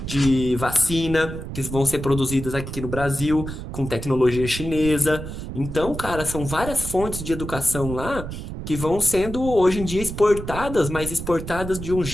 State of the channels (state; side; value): noise; right; rumble, 8 dB below the sound